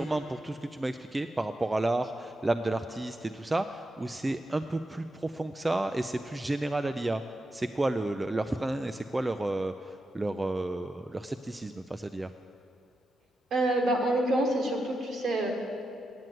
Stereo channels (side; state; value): both; normal; correlation 0.88